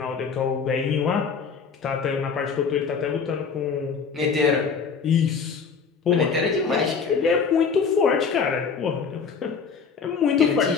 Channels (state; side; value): quieter; right; 5.8 dB